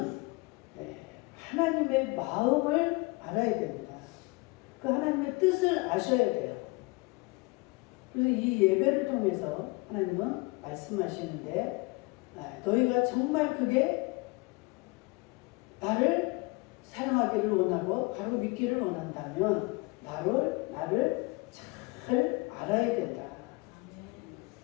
하나님의 마음을 알아야 됩니다. 그 하나님의 뜻을 아셔야 돼요. 그래서 이 예배를 통해서 하나님은 말씀하시는데 너희가 정말 그게 나를 사랑하기를 원하고 바로 믿기를 원한다면 나를 잘 알아야 된다.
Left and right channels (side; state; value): right; quieter; 26.2 dB